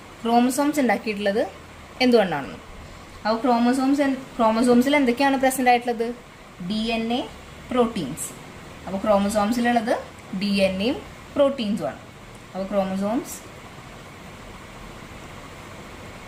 Chromosomes ഉണ്ടാക്കിയിട്ടുള്ളത് എന്തുകൊണ്ടാണ്? അപ്പോൾ ക്രോമസോംസിൽ എന്തൊക്കെയാണ് പ്രസന്റ് ആയിട്ടുള്ളത്? DNA, proteins. അപ്പോൾ ക്രോമസോംസിലുള്ളത് DNAയും പ്രോട്ടീൻസും ആണ്. അപ്പോൾ chromosomes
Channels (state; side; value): identical; both; correlation 1.00